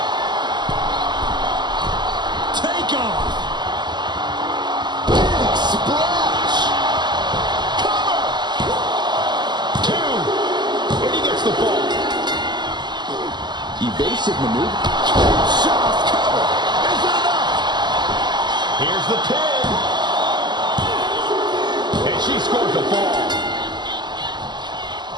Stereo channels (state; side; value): late; left; 0.21 ms